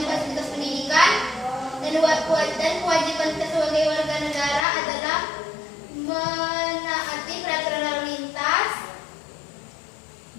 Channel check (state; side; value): drops out; right; at 4.7 s